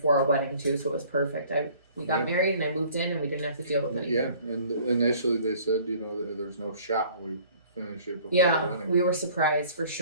our wedding too. So it was perfect. We got Yeah. married, and I moved in, and we didn't have to deal with anything. Yeah, and initially they said, that there's no shot we finish it before the Yeah, wedding. we were surprised for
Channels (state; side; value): inverted; both; correlation -0.53